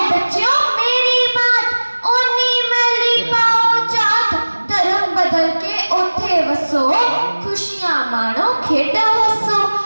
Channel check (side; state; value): both; inverted; correlation -1.00